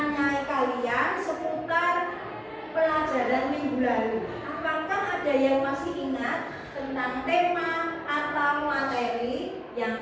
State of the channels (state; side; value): identical; both; correlation 1.00